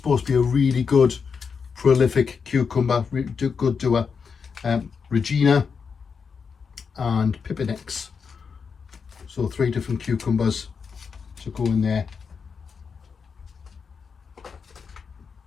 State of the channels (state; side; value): quieter; right; 5.8 dB